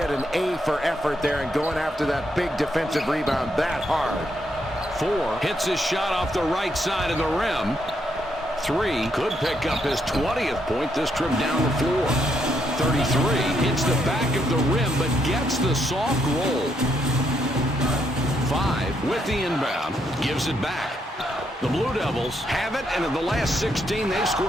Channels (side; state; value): both; normal; correlation 0.76